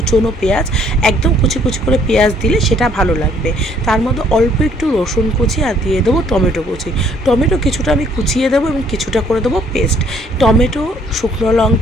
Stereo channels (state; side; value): normal; both; correlation 0.62